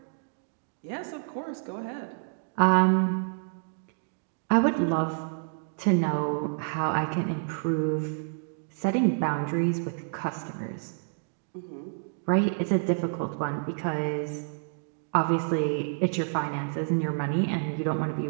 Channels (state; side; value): silent; left; digital silence